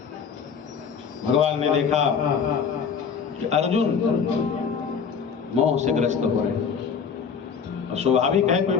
भगवान ने देखा कि अर्जुन मोह से ग्रस्त हो रहे, और स्वाभाविक है, कोई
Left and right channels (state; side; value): quieter; right; 6.4 dB